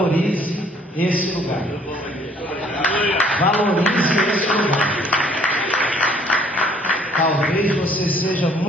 esse lugar. Valorize esse lugar. Talvez você seja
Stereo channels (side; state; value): both; normal; correlation 0.59